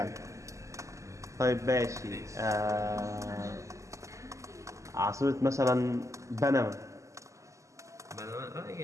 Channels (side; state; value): left; late; 0.15 ms